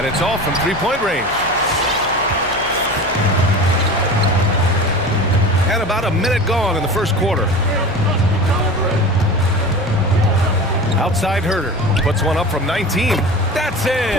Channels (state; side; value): noise; left; hum, 16 dB below the sound